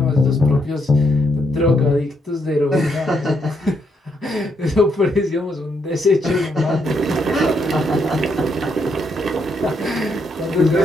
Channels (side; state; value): both; normal; correlation 0.76